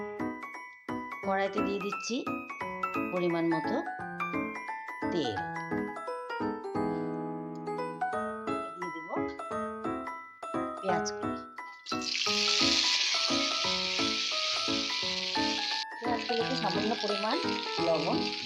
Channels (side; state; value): both; identical; correlation 1.00